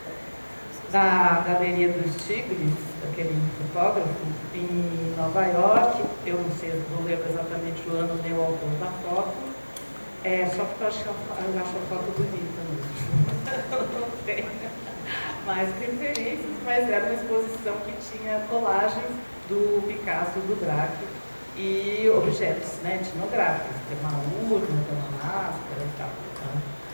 da Galeria dos Tigres, daquele fotógrafo, em Nova York. Eu não sei, não lembro exatamente o ano nem o autor da foto, só porque eu acho a foto bonita mesmo. Não tem mais referências, mas era uma exposição que tinha colagens do Picasso e do Braque, e objetos, né, etnográficos, tem uma urna, tem uma máscara e tal. Né?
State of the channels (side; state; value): both; inverted; correlation -1.00